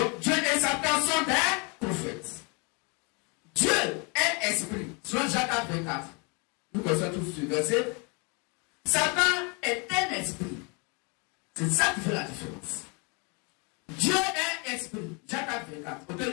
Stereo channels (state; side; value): quieter; right; 32.3 dB